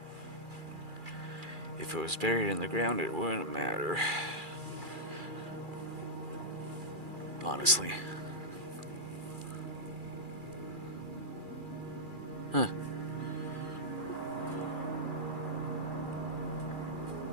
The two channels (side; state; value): left; late; 2.4 ms